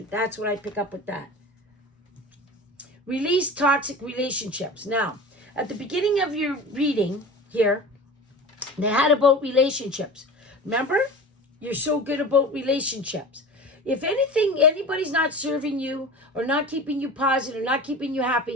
That's what I pick up with that. Release toxic relationships. Now, at the beginning of your reading here, they had about relationships. Remember? You're so good about relationships. If anybody's not serving you or not keeping you positive or not keeping you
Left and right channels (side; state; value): both; normal; correlation 0.34